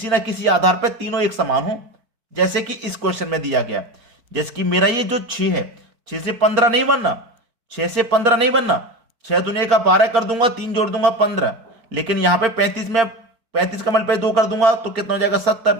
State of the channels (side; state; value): left; late; 4.6 ms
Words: ना किसी आधार पर तीनों एक समान हो, जैसे कि इस क्वेश्चन में दिया गया। जैसे कि मेरा ये जो 6 है, 6 से 15 नहीं बनना, 6 से 15 नहीं बनना। 6 दुनिया का 12 कर दूंगा, 3 जोड़ दूंगा 15। लेकिन यहां पे 35 में 35 का मल्टीप्लाई 2 कर दूंगा तो कितना हो जाएगा